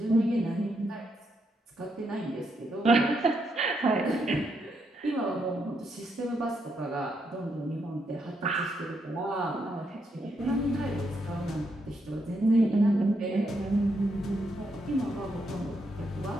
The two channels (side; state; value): both; normal; correlation 0.79